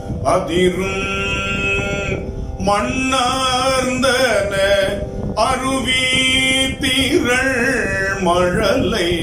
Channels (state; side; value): identical; both; correlation 1.00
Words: அதிரும், மண்ணார்ந்தன அருவி திரள் மழலை